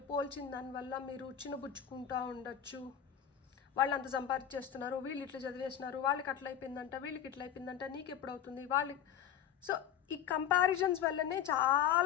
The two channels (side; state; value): right; quieter; 9.4 dB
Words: పోల్చిన దానివల్ల మీరు చిన్నబుచ్చుకుంటూ ఉండొచ్చు. వాళ్ళు అంత సంపాదించేస్తున్నారు, వీళ్ళు ఇట్లా చదివేస్తున్నారు, వాళ్ళకి అట్లా అయిపోయిందంట, వీళ్ళకి ఇట్లా అయిపోయిందంట, నీకు ఎప్పుడు అవుతుంది వాళ్ళకి. సో ఈ కంపారిజన్స్ వల్లనే